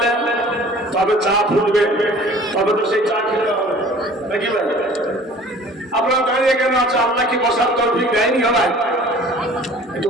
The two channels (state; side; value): normal; both; correlation 0.48